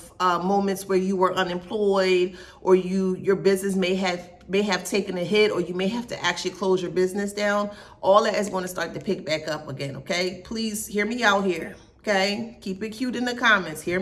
moments where you were unemployed, or your business may have taken a hit, or you may have to actually close your business down, all that is going to start to pick back up again, okay? Please hear me out here, okay? Keep it cute in the comments. Hear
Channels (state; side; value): identical; both; correlation 1.00